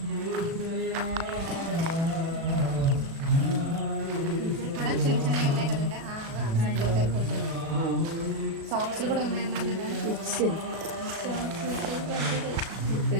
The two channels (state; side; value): late; left; 36 ms